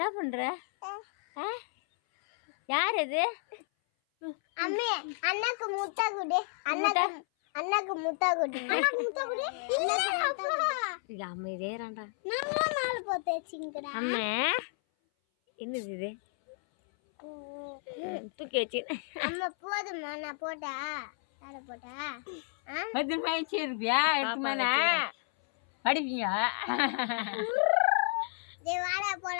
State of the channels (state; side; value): silent; right; 56 dB below the other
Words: பண்ற யார் அது அம்மே அண்ணாக்கு முட்டை குடு அண்ணாக்கு முட்டை குடு அம்மா இதேறான்டா நான் நாலு போத்தேச்சிங்கடா அம்மா என்னது இது தூக்கி வச்சு அம்மா போதுமா நான் போட்டா யார போட்டா பத்து மணிச்சு இருப்பியா எடுத்துமானா படிப்பீங்க டேய் வாடா